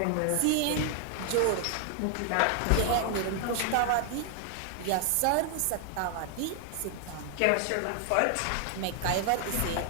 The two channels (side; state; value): both; different; correlation 0.00